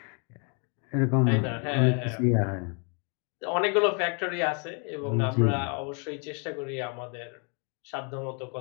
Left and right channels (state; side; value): quieter; right; 37.7 dB